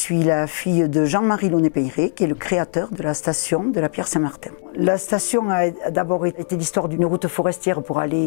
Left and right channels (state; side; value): silent; right; 65 dB below the other